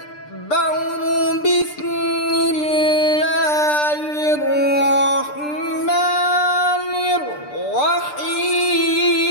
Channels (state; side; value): late; right; 6.7 ms